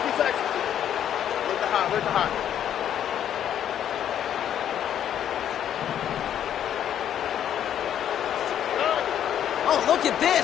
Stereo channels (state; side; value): quieter; right; 10.1 dB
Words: you said. Where's the hot? Oh, look at